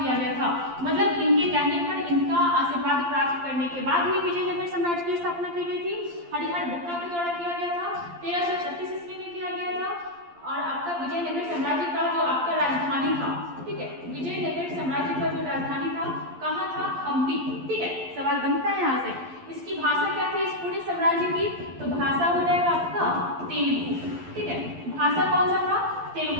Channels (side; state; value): left; late; 12 ms